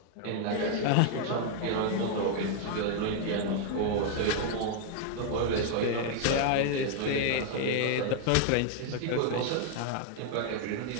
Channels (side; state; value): both; different; correlation 0.00